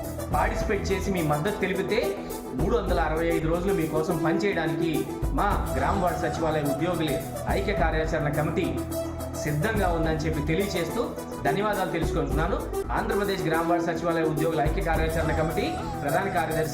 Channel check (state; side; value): identical; both; correlation 1.00